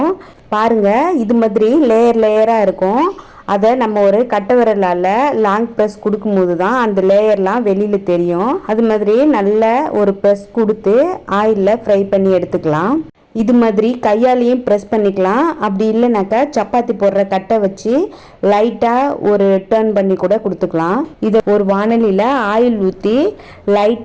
பாருங்க இது மாதிரி லேயர் லேயரா இருக்கும். அதை நம்ம ஒரு கட்டை விரலால் லாங் ப்ரெஸ் கொடுக்கும்போது தான் அந்த லேயர்லாம் வெளியில் தெரியும். அது மாதிரி நல்ல ஒரு ப்ரெஸ் கொடுத்து ஆயிலில் ஃப்ரை பண்ணி எடுத்துக்கலாம். இது மாதிரி கையாலையும் ப்ரெஸ் பண்ணிக்கலாம். அப்படி இல்லைனாக்கா சப்பாத்தி போடுற கட்டை வச்சு லைட்டாக ஒரு டர்ன் பண்ணி கூட கொடுத்துக்கலாம். இதை ஒரு வானலியில் ஆயில் ஊற்றி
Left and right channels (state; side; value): identical; both; correlation 1.00